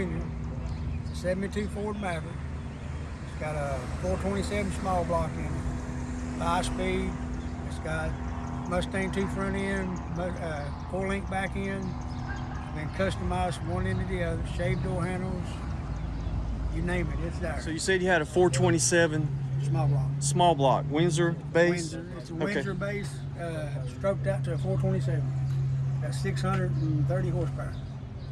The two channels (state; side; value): identical; both; correlation 1.00